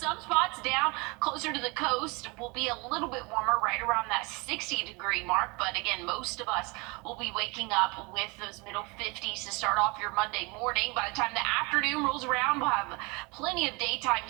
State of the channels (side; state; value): left; quieter; 27.7 dB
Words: spots down closer to the coast will be a little bit warmer, right around that 60-degree mark. But again, most of us will be waking up with those middle 50s to start off your Monday morning. By the time the afternoon rolls around, we'll have plenty of daytime